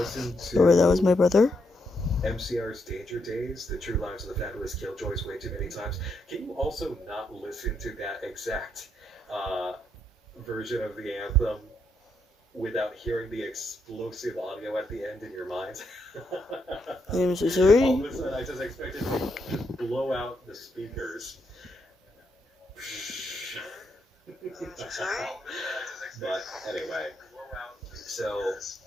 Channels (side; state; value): both; normal; correlation 0.79